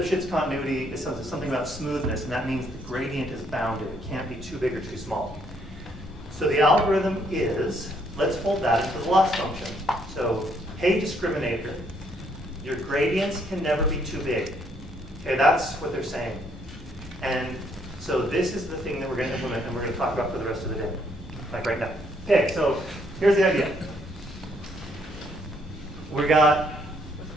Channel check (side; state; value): both; normal; correlation 0.69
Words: continuity is something about smoothness, and that means the gradient is bounded. It can't be too big or too small. So the algorithm is, let's fold that into the loss function. So, hey discriminator, your gradients can never be too big. Okay, that's what they're saying. And so this is the thing that we're going to implement, and we're going to talk about for the rest of the day, like right now. Okay, so here's the idea.